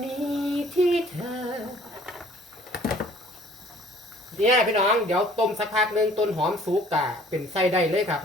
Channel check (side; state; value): both; normal; correlation 0.55